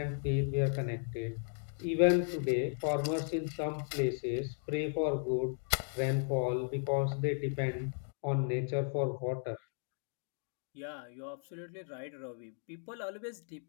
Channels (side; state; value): right; silent; 54 dB below the other